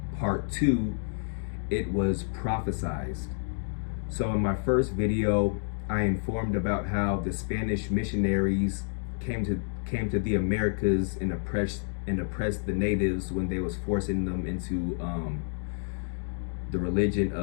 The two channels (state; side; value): silent; right; digital silence